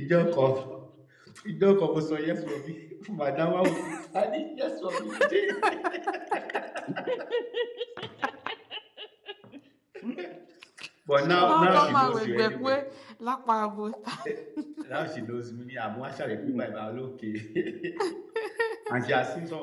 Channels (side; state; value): both; identical; correlation 1.00